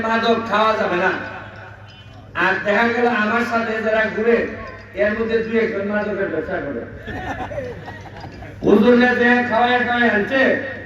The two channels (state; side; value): identical; both; correlation 1.00